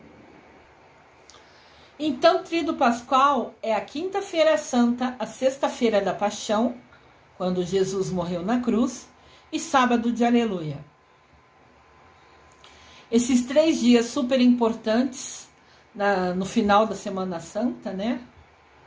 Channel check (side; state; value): both; identical; correlation 1.00